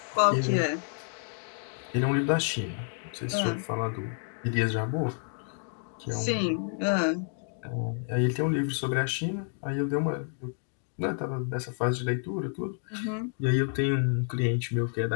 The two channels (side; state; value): right; silent; 58 dB below the other